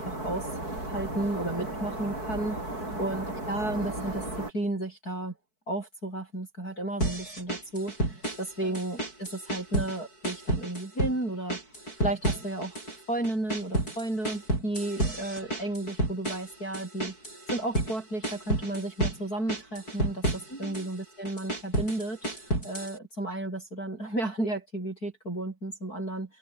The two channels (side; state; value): right; late; 4.6 ms